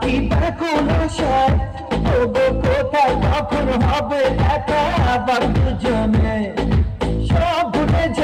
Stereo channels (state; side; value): identical; both; correlation 1.00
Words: ব্যাকুল আশায় তবু কোথায় কখন হবে দেখা আবার দুজনে সব ভুলে